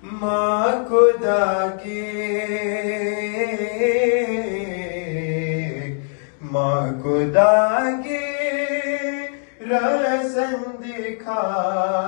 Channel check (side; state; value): right; silent; 59 dB below the other